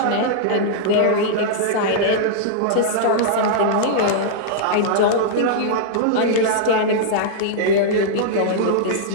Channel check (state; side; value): different; both; correlation -0.02